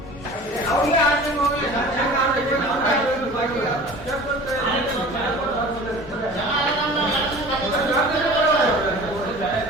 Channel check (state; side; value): normal; both; correlation 0.42